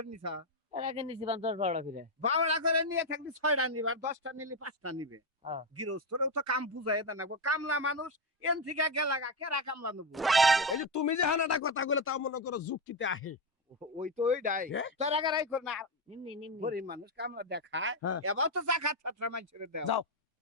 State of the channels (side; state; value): both; normal; correlation 0.08